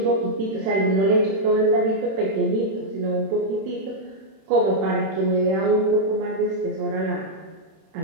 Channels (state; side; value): late; left; 31 ms